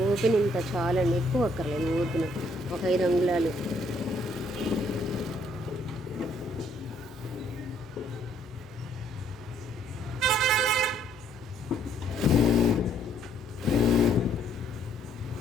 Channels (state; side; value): normal; both; correlation 0.67